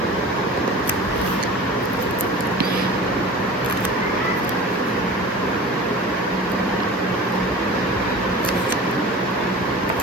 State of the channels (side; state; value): both; normal; correlation 0.37